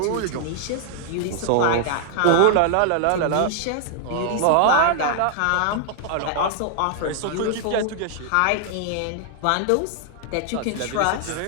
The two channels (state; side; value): different; both; correlation 0.00